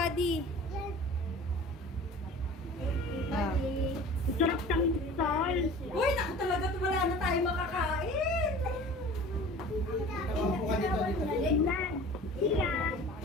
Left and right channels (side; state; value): both; normal; correlation 0.42